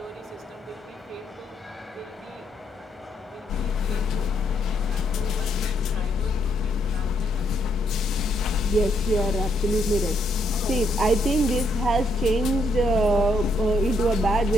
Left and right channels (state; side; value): normal; both; correlation 0.75